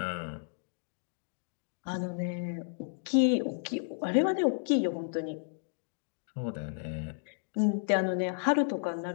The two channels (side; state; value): right; silent; digital silence